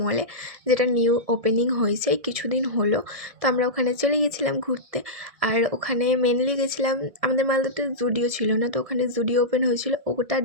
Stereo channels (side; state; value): left; late; 1.7 ms